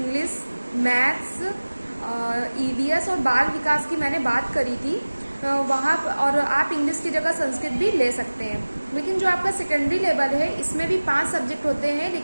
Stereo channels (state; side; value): inverted; both; correlation -1.00